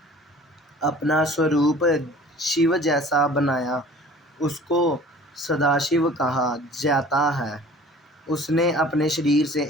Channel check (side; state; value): both; normal; correlation 0.47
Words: अपना स्वरूप शिव जैसा बनाया, उसको सदाशिव कहा जाता है। उसने अपने शरीर से